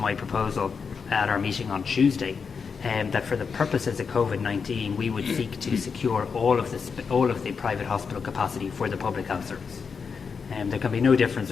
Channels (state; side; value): quieter; right; 5.7 dB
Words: proposal at our meeting on Tuesday that for the purposes of Covid-19, we would seek to secure all of the private hospital capacity for the public health service. There can be no difference